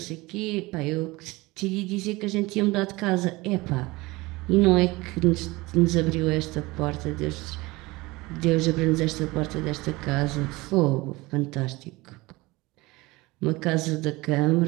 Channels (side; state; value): left; quieter; 21.9 dB